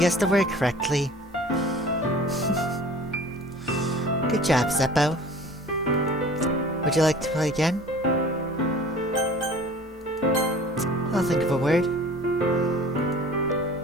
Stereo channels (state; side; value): normal; both; correlation 0.45